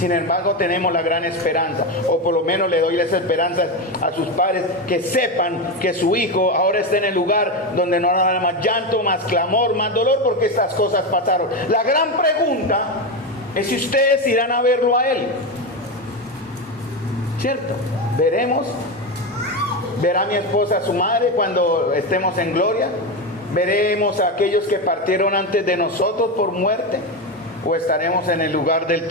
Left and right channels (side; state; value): both; normal; correlation 0.14